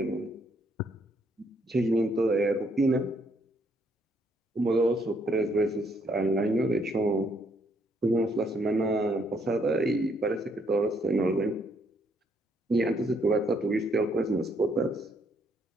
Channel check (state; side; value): normal; both; correlation 0.71